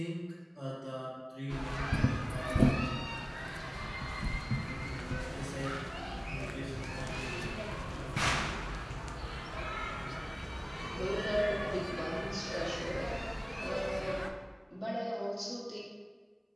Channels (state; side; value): identical; both; correlation 1.00